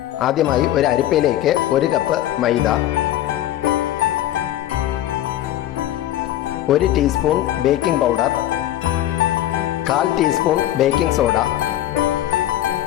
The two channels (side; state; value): right; quieter; 13.1 dB